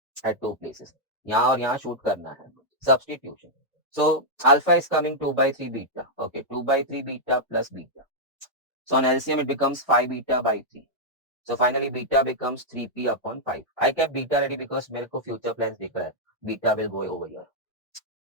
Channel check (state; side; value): normal; both; correlation -0.05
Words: at two places. यहाँ और यहाँ shoot करना है. Substitution. So alpha is coming 2/3 beta. Okay, 2/3 beta plus beta. So on LCM it becomes 5 beta by 3. So finally beta becomes 3p upon 5. I kept beta ready because मेरे को future plans दिख रहा है. Beta will go over here.